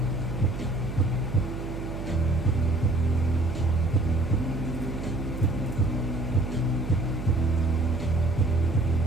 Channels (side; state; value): right; noise; hum, 7 dB below the sound